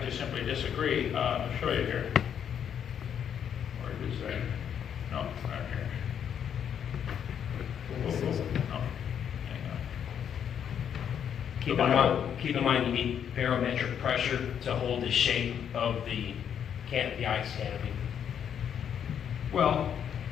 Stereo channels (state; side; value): quieter; right; 8.6 dB